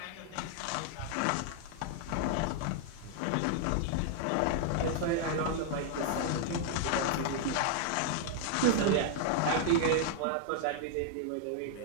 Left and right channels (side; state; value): both; different; correlation 0.00